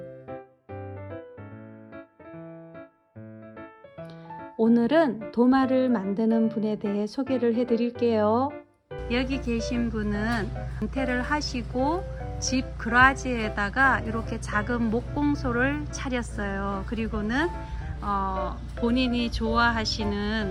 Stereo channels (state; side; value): identical; both; correlation 1.00